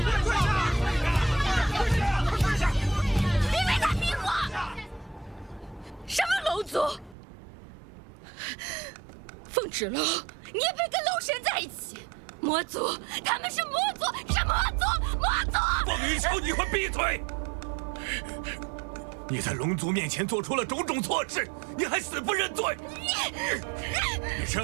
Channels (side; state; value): left; drops out; at 7.2 s